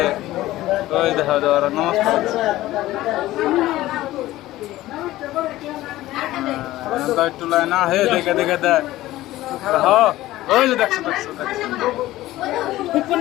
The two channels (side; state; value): right; quieter; 16.2 dB